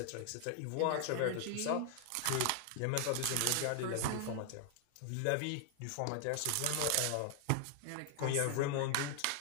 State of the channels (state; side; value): different; both; correlation 0.00